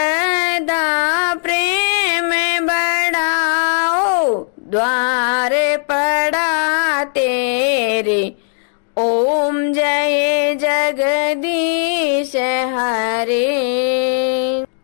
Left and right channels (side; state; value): right; silent; digital silence